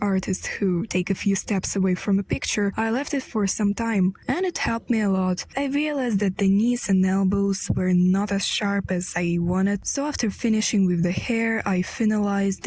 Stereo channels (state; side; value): identical; both; correlation 1.00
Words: artists who take a few steps away from a picture, I left it for some time, and it helped me a lot. I realized that the knees and elbows were not as sharp as I wanted, so after finishing with the hair, I finalized